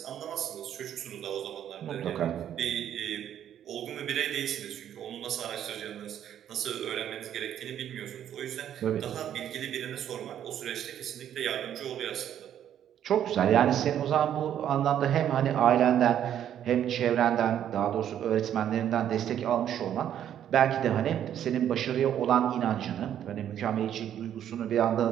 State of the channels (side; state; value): left; quieter; 10.2 dB